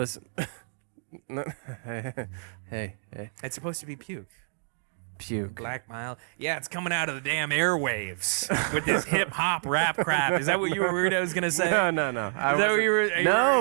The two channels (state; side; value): silent; left; digital silence